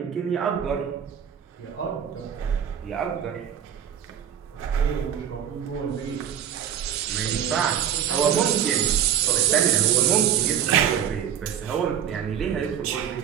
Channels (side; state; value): left; quieter; 9.1 dB